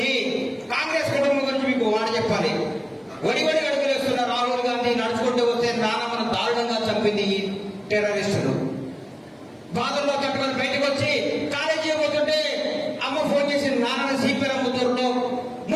కాంగ్రెస్ కుటుంబం గురించి మీకు మాట చెప్పాలి. వడి అడుగులు వేస్తున్న రాహుల్ గాంధీ నడుచుకుంటూ వస్తే నానమ్మను దారుణంగా చంపింది ఈ టెర్రరిస్టులు. బాధల్లో తట్టుకొని బయటకు వచ్చి కాలేజీ పోతుంటే అమ్మ ఫోన్ చేసి నాన్న సిపిఎం ముద్దరులో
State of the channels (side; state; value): both; identical; correlation 1.00